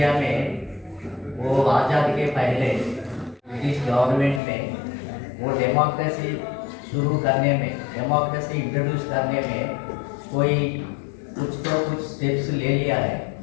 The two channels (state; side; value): drops out; right; at 4.4 s